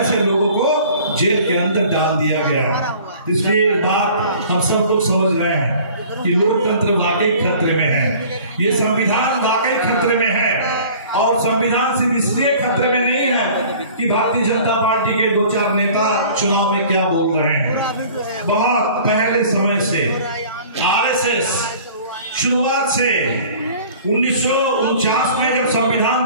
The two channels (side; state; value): both; inverted; correlation -0.48